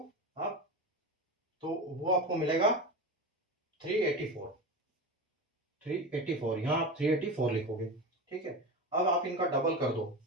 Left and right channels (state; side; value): normal; both; correlation 0.24